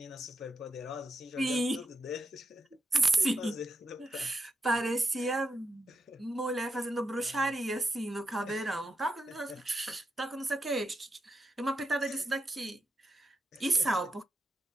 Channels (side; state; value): both; normal; correlation 0.85